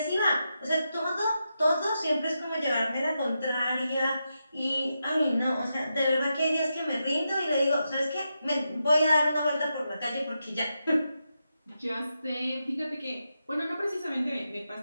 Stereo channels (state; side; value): inverted; both; correlation -0.86